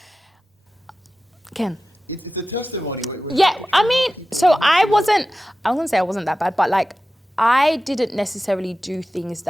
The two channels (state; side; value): normal; both; correlation 0.94